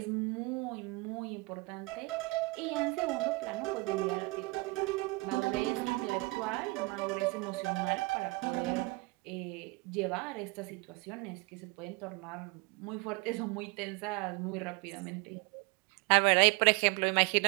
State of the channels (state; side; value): quieter; left; 25.7 dB